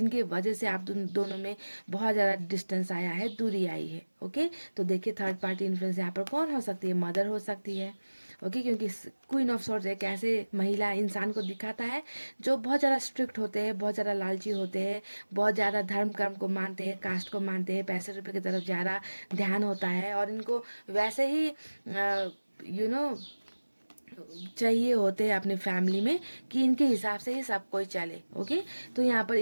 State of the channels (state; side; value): inverted; both; correlation -1.00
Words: वजह से आप दोनों में बहुत ज़्यादा डिस्टेंस आया है, दूरी आई है। ओके, तो देखिए थर्ड पार्टी इन्फ्लुएंस यहाँ पर कौन हो सकती है, मदर हो सकती है। ओके, क्योंकि क्वीन ऑफ सॉर्ड्स एक ऐसे महिला इंसान को दिखाता है जो बहुत ज़्यादा स्ट्रिक्ट होते हैं, बहुत ज़्यादा लालची होते हैं, बहुत ज़्यादा धर्म कर्म को मानते हैं, कास्ट को मानते हैं, पैसे रुपए की तरफ ज़्यादा ध्यान होता है, और इनको वैसे ही यू नो चाहिए होते हैं अपने फैमिली में कि इनके हिसाब से ही सब कोई चले। ओके, तो यहाँ पर